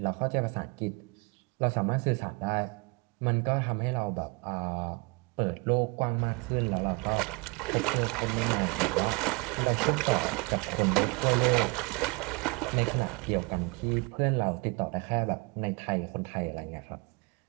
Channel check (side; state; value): left; quieter; 29.1 dB